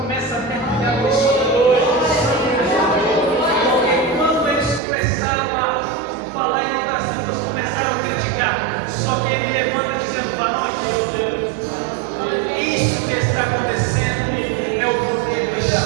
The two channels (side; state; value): left; drops out; at 4.8 s